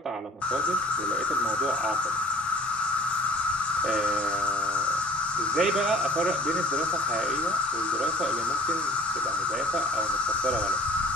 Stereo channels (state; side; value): normal; both; correlation 0.51